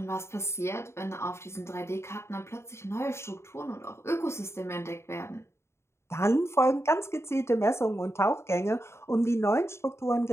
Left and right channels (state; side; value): late; right; 0.13 ms